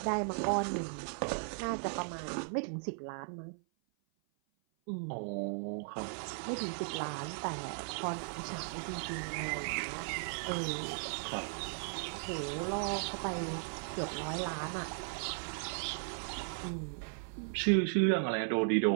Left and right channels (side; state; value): left; silent; 53 dB below the other